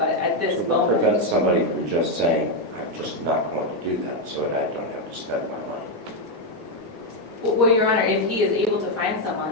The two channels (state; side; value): normal; both; correlation 0.03